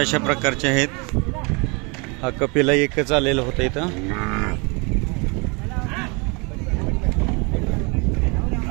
प्रकारचे आहेत. हा कपिला एकच आलेला होता इथं.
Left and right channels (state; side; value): quieter; left; 30.0 dB